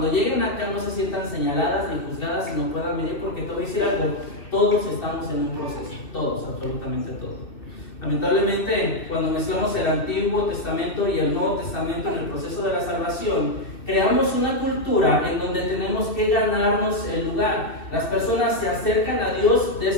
lleguen acá no se sientan señaladas ni juzgadas y no puedan venir, porque te voy a decir algo, todos estamos en un proceso, todos, absolutamente todos. Lamentablemente, cuando mezclamos el Antiguo Testamento y el Nuevo Testamento en el proceso de la salvación, creamos una cultura en donde tenemos que ganarnos el lugar. Las personas se acercan a Dios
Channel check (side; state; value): right; late; 2.8 ms